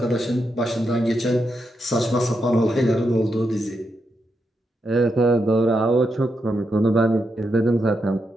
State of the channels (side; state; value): both; normal; correlation 0.84